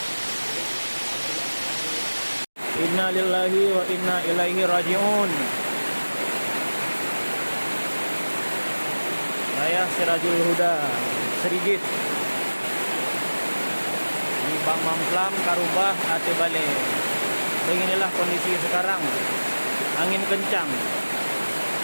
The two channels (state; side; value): inverted; both; correlation -1.00